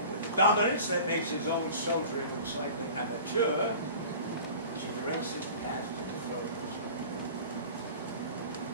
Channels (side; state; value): both; inverted; correlation -0.41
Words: with the dominance that makes his own soldiering look slightly amateur, she directs his path to the throne.